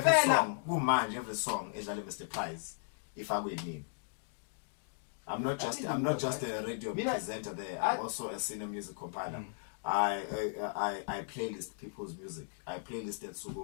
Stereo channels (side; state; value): right; silent; digital silence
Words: Ngempela? song, kumanje every song edlala Mr. Prize. If I will mean. I'm not just a radio presenter there. I'm also a senior music compiler. I playlist people's music. I playlist that